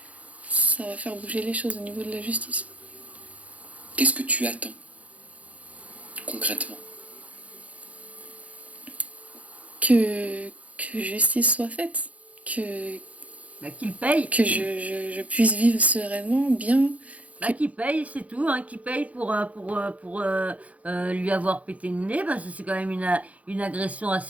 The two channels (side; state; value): left; late; 0.068 ms